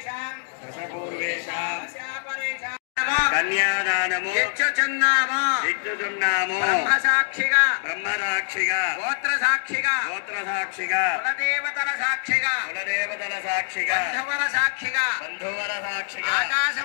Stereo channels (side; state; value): right; silent; digital silence